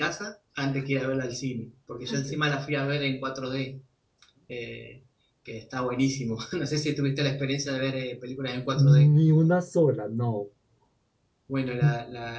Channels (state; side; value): identical; both; correlation 1.00